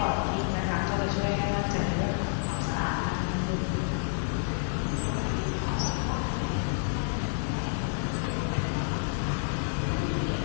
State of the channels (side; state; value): right; silent; digital silence